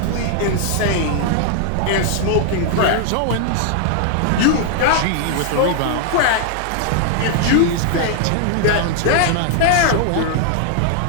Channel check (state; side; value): different; both; correlation 0.00